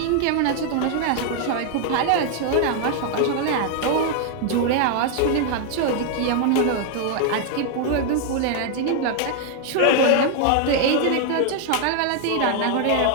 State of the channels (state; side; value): different; both; correlation 0.00